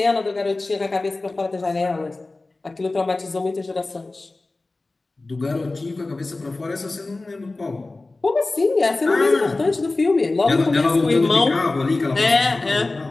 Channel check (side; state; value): right; quieter; 3.2 dB